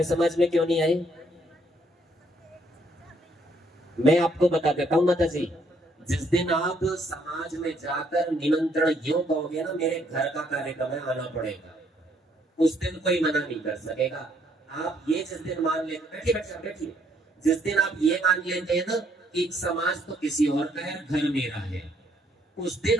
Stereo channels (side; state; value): both; normal; correlation 0.68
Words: समाज में क्यों नहीं आए? मैं आपको बता देता हूँ माता जी, जिस दिन आप समाज में जाकर निमंत्रण यूं कहोगे ना, मेरे घर का कार्यक्रम है आना पड़ेगा, उस दिन कोई मना नहीं कर सकेगा। आप ये जिस दिन मान लेते, बैठिए बैठिए बैठिए, जिस दिन आप ये मान लेते हैं ना कि समाज तो किसी और का है, घर मेरा है, उस दिन